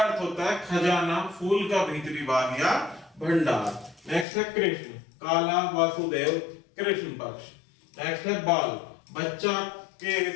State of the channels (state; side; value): drops out; right; at 4.2 s